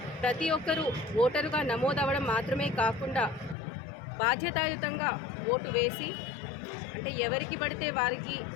ప్రతి ఒక్కరూ ఓటరుగా నమోదవ్వడం మాత్రమే కాకుండా బాధ్యతాయుతంగా ఓటు వేసి, అంటే ఎవరికి పడితే వారికి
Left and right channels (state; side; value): drops out; right; at 3.6 s